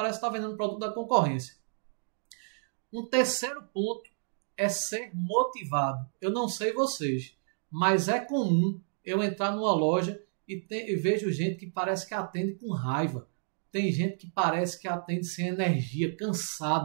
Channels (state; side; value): silent; left; digital silence